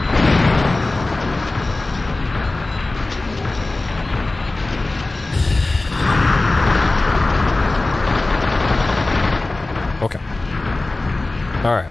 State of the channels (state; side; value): quieter; right; 3.0 dB